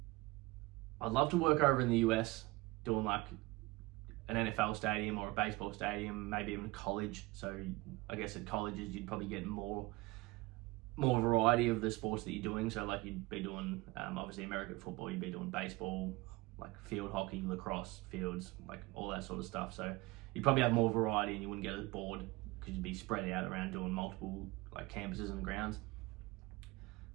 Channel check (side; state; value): left; quieter; 22.0 dB